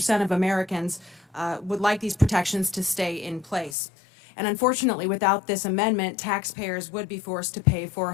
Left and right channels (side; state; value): right; drops out; at 3.8 s